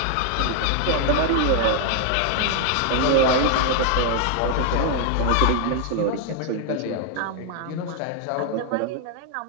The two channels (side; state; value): both; different; correlation 0.00